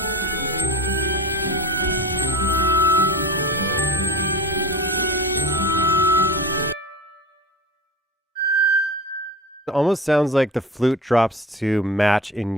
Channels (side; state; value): both; normal; correlation 0.34